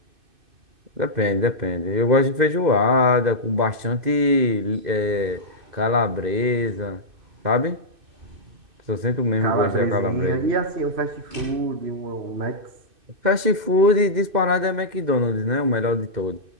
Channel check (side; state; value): left; late; 2.6 ms